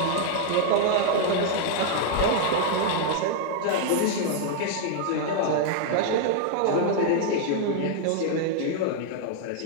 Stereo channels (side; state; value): both; different; correlation 0.00